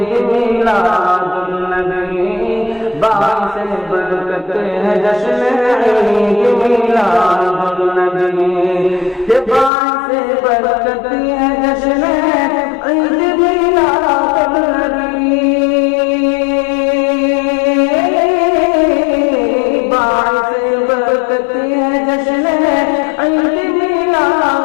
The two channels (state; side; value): drops out; right; at 9.7 s